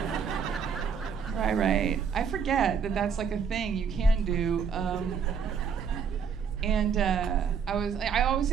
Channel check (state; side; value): quieter; left; 6.5 dB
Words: Right. I forget that that's like a thing you can do. I always